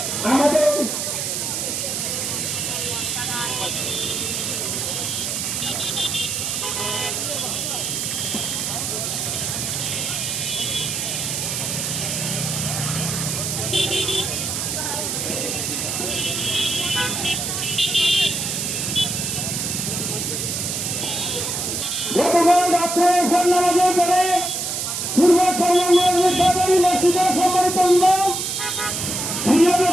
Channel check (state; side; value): noise; right; hiss, 2 dB below the sound